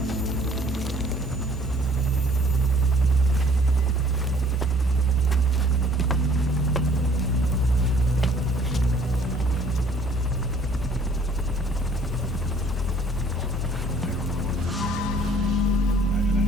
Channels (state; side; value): normal; both; correlation 0.56